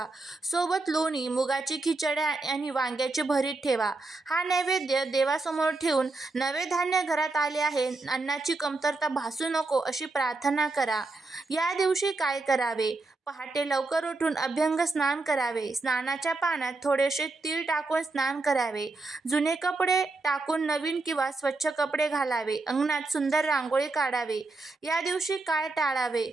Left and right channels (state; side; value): quieter; left; 3.4 dB